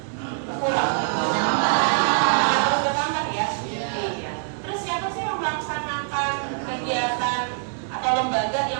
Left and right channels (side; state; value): left; silent; 63 dB below the other